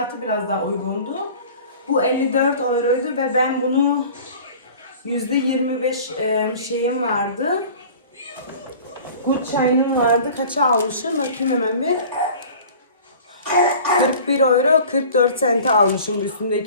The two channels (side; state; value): both; inverted; correlation -0.43